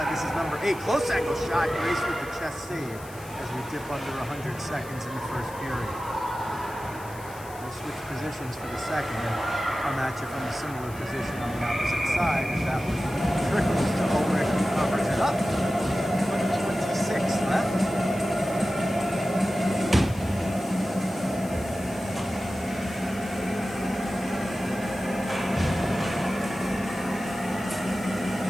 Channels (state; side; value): noise; left; hiss, 19 dB below the sound